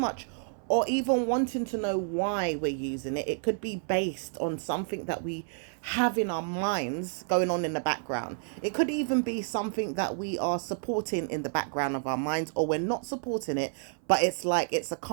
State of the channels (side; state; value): left; silent; 58 dB below the other